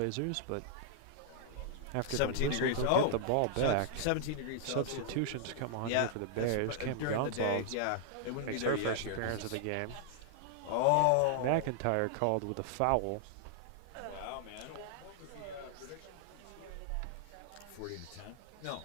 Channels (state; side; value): different; both; correlation 0.00